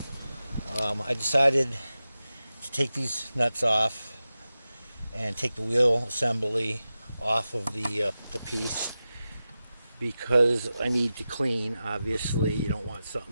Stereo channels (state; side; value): inverted; both; correlation -0.93